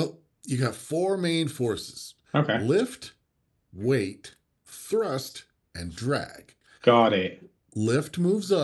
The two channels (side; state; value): both; identical; correlation 1.00